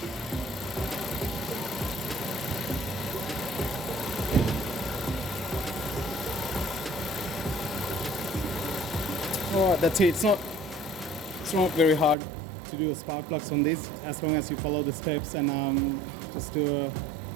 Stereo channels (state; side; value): drops out; left; at 12.2 s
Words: Alright, that's it. It's not very hard to do a spark plugs on this, as long as you follow the steps and just do a